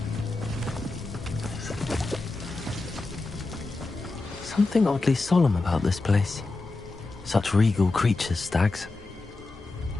Something oddly solemn about this place. Such regal creatures, stags.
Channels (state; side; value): quieter; right; 3.4 dB